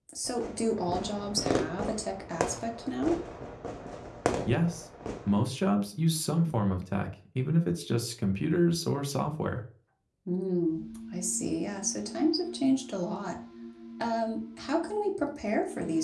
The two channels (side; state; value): both; identical; correlation 1.00